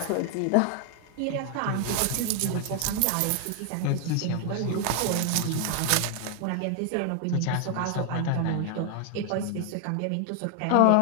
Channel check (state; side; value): different; both; correlation 0.00